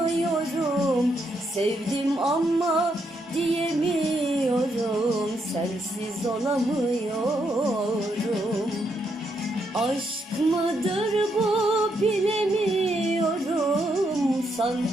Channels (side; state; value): both; normal; correlation 0.78